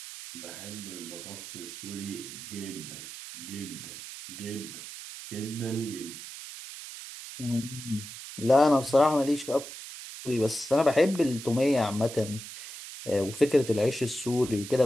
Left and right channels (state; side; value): noise; right; hiss, 11 dB below the sound